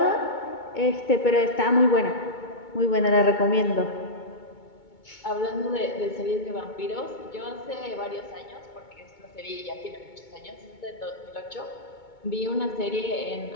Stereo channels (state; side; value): late; right; 2.2 ms